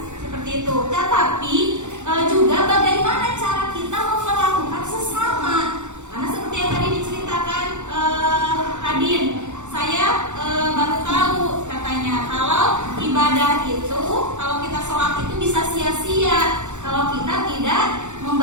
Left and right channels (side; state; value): left; late; 0.84 ms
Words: seperti itu. Tetapi juga bagaimana cara kita memperlakukan sesama. Karena seperti yang tadi diceritakan Adin, saya baru tahu katanya kalau ibadah itu, kalau kita sholat itu bisa sia-sia kalau kita tidak